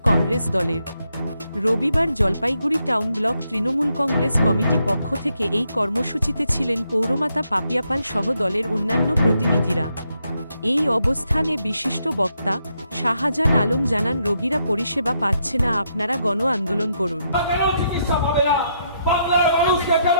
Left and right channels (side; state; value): both; inverted; correlation -0.78